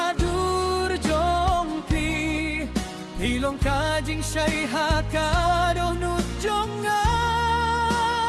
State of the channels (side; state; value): both; identical; correlation 1.00